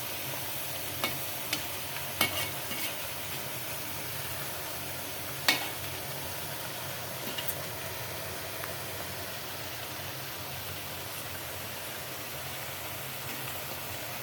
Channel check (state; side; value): identical; both; correlation 1.00